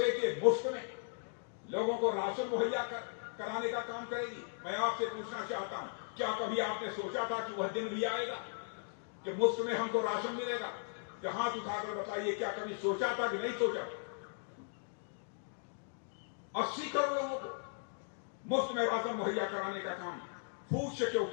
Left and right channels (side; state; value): right; silent; digital silence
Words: के मुफ्त में लोगों को राशन मुहैया कराने का काम करेगी? मैं आपसे पूछना चाहता हूं, क्या कभी आपने सोचा था कि वह दिन भी आएगा कि मुफ्त में हमको राशन मिलेगा? क्या हाथ उठाकर बताइए, क्या कभी सोचा था कि नहीं सोचा? 80 करोड़ लोगों को मुफ्त में राशन मुहैया कराने का काम फूड